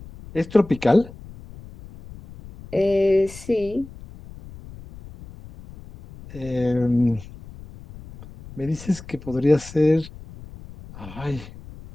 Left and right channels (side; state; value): left; noise; rumble, 17 dB below the sound